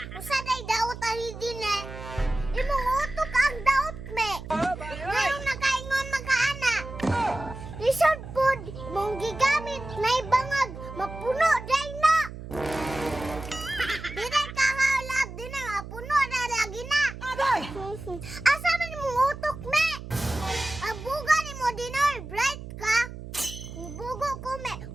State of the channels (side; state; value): right; noise; hum, 11 dB below the sound